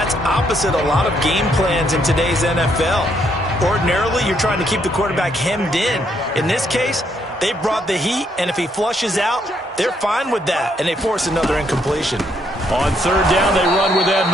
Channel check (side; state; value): both; normal; correlation 0.73